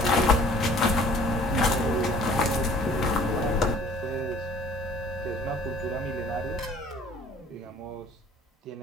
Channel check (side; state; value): both; normal; correlation 0.52